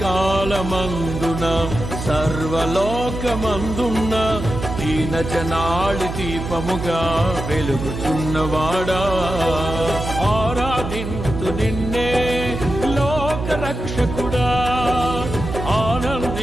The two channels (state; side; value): noise; right; hum, 6 dB below the sound